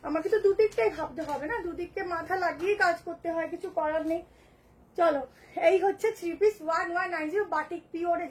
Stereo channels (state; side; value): identical; both; correlation 1.00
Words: আমাকে তো দুদিকটাই ভাবতে হবে না, দুদিককে মাথা লাগিয়ে কাজ করতে হয়, কিছু করার নেই। চলো, এই হচ্ছে 3 পিস 1190 বাটিক পিওরে